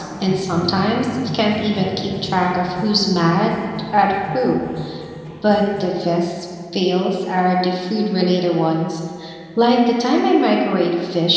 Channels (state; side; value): identical; both; correlation 1.00